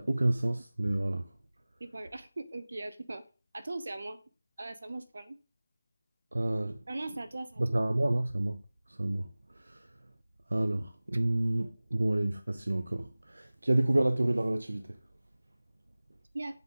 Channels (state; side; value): inverted; both; correlation -0.99